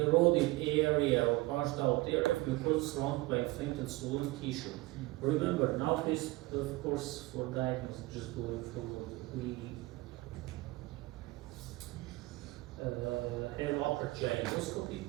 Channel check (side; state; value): left; quieter; 20.9 dB